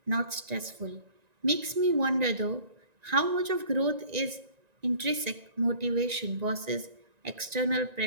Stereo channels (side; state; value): left; late; 1.9 ms